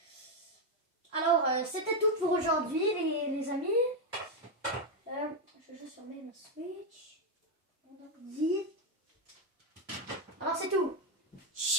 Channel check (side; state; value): both; normal; correlation 0.04